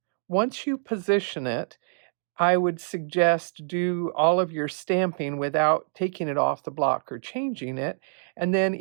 once you position it, I would suggest do all of your stamping without taking it off the block or changing it. And then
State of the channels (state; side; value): silent; left; digital silence